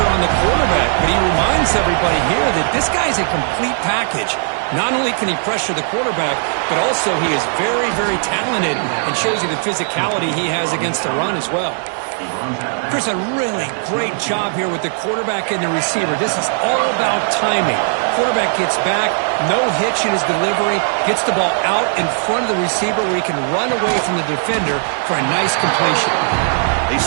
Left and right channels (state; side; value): silent; left; 64 dB below the other